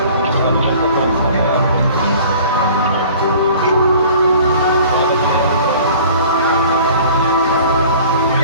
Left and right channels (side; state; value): both; inverted; correlation -0.48